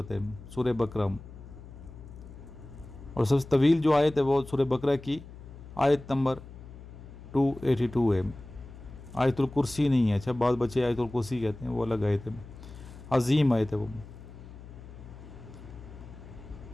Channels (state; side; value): noise; left; hum, 16 dB below the sound